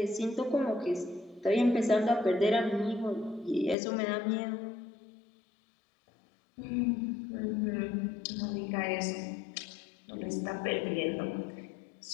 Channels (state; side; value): drops out; right; at 3.8 s